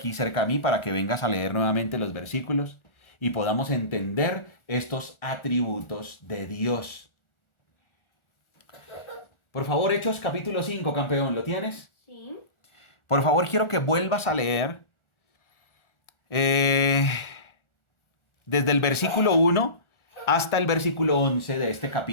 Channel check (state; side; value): late; right; 1.4 ms